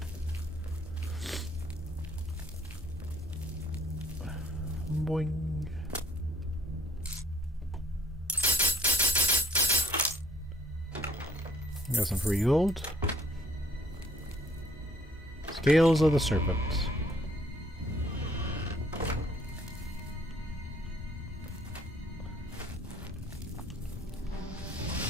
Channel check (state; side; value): normal; both; correlation 0.62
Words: Boing. Got some free gold. Scales of the Serpent.